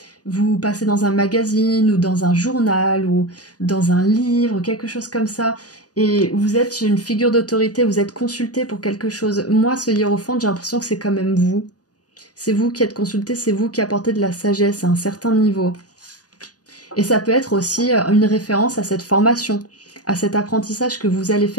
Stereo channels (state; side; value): late; right; 0.68 ms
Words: vous passez dans un magazine, ou dans un journal, ou dans un livre, quelque chose comme ça, et vous êtes une figure d'autorité, vous êtes consulté pour quelque chose. Moi, ce hiérophante, j'ai l'impression que c'est quand même vous. C'est vous qui êtes consulté, c'est vous qui apportez de la sagesse à un certain niveau. Et ça peut être aussi une référence à cette formation, à cet apprentissage que vous allez